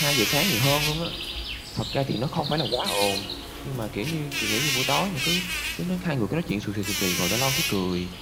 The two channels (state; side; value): identical; both; correlation 1.00